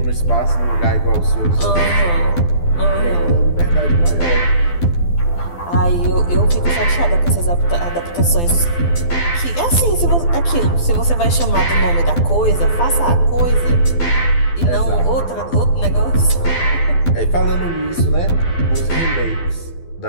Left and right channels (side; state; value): right; late; 12 ms